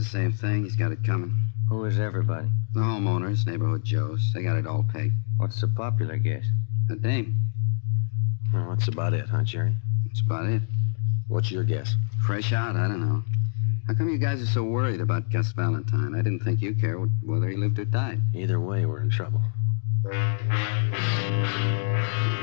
same thing. He's got it coming. Who is everybody? The homeowners, neighborhood Joes. They got it all pegged. What's the popular guess? A dame. Well, that's about it, huh, Jerry? That's about it. What's your guess? Fresh out, I don't know. How come you guys are so worried about Gus Valentine? I didn't think you cared whether he lived or died. Either way, we're in trouble.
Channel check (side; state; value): right; silent; digital silence